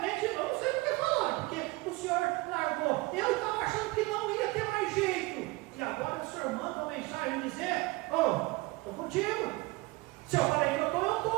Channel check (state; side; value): quieter; left; 22.1 dB